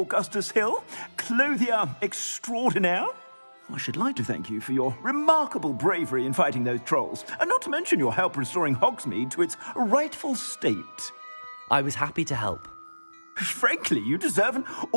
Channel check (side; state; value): both; inverted; correlation -1.00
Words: Hill, clothier extraordinaire. I should like to thank you for your remarkable bravery in fighting those trolls, and not to mention your help restoring Hogsmeade to its rightful state. I was happy to help. Frankly, you deserve an